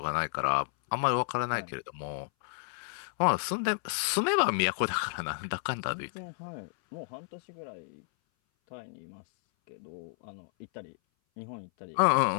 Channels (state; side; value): silent; right; 57 dB below the other